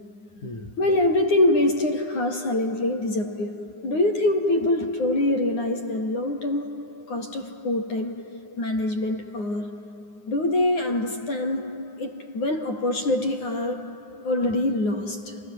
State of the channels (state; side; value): late; right; 9.7 ms